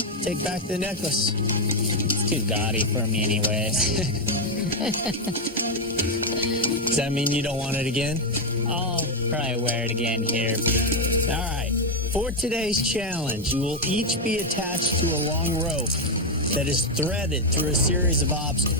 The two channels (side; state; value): both; normal; correlation 0.04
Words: take back the necklace. It's too gaudy for me anyways. Does that mean you don't want it again? I'll probably wear it again here. All right. For today's challenge, you will each be attached to a long rope that is threaded through a series of